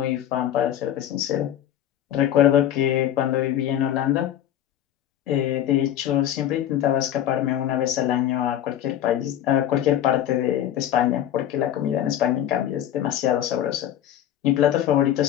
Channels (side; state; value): right; quieter; 11.3 dB